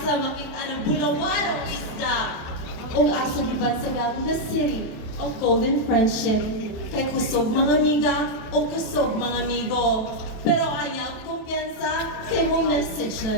makita ng bulawalong isda o asa gibansagan the city of golden friendship. Kay kusog mga amiga o kusog mga amigo. Pero ayaw kumpiyansa kay mong message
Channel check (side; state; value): right; late; 27 ms